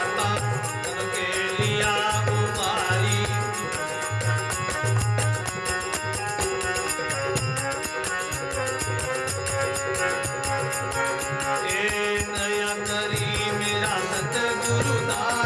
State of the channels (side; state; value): both; identical; correlation 1.00